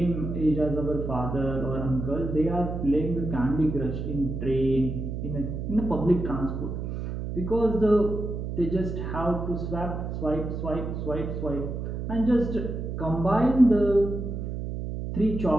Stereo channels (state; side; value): noise; right; hum, 5 dB below the sound